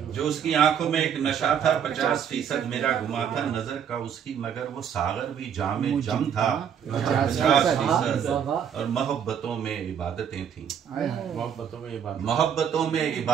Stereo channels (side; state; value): left; quieter; 8.2 dB